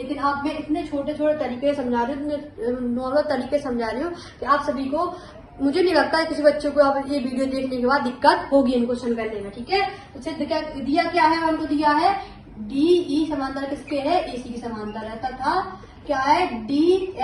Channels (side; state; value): both; identical; correlation 1.00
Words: आप मैं इतने छोटे छोटे तरीके समझा रही हूँ, इतने नॉर्मल तरीके समझा रही हूँ कि आप सभी को, मुझे नहीं लगता है किसी बच्चों को अब ये वीडियो देखने के बाद दिक्कत होगी इन क्वेश्चन करने में। ठीक है, तो सिद्ध क्या दिया, क्या है हमको दिया है, DE समांतर किसके है, AC के समांतर है, तथा क्या है,